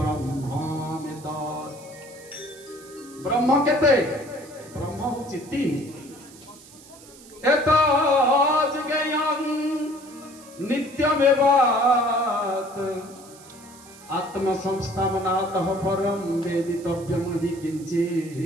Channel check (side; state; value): right; noise; hiss, 21 dB below the sound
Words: ब्रह्म केते? ब्रह्म होछि तीन। एतज्ज्ञेयं नित्यमेवात् आत्मसंस्थानातः परं वेदितव्यं हि